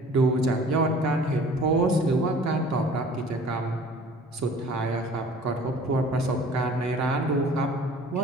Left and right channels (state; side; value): normal; both; correlation 0.48